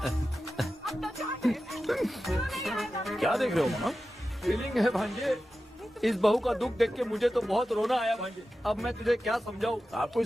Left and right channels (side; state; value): both; normal; correlation 0.93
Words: क्या देख रहे हो मामा? फीलिंग है भांजे। इस बहू का दुख देख के मुझे तो बहुत रोना आया भाई। अब मैं तुझे क्या समझाऊं। आपको